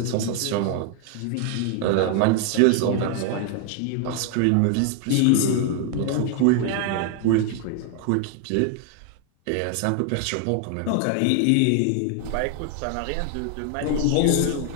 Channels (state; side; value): different; both; correlation 0.00